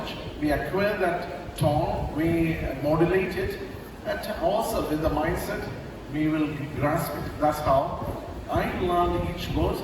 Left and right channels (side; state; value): both; identical; correlation 1.00